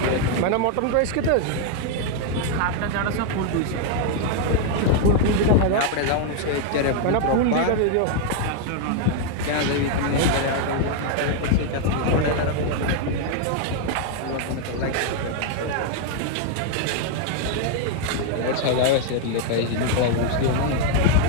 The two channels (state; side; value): different; both; correlation 0.00